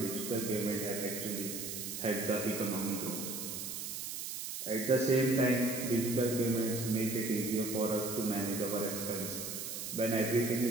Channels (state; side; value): noise; right; hiss, 6 dB below the sound